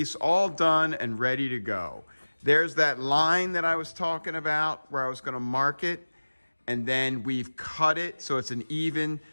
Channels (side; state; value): both; inverted; correlation -1.00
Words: all done and ready to go. There's that line that I was talking about where I was gonna mark it, and then we've cut it so it's an even